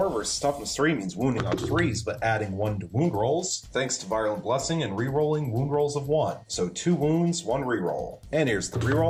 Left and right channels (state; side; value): identical; both; correlation 1.00